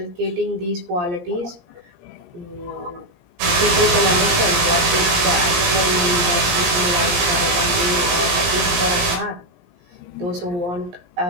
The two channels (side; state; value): left; late; 17 ms